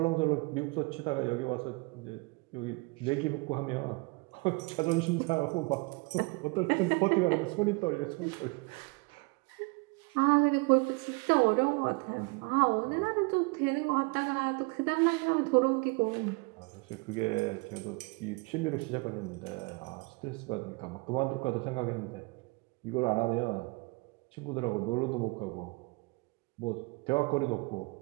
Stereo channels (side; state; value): left; quieter; 28.6 dB